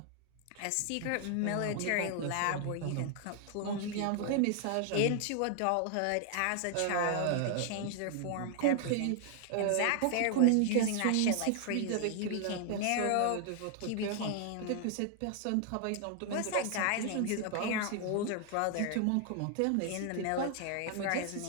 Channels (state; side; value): different; both; correlation 0.00